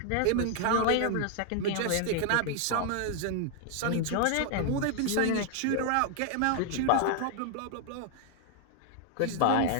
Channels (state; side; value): different; both; correlation 0.00